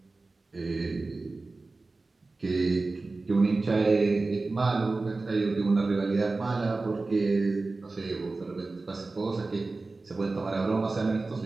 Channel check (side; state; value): left; quieter; 3.5 dB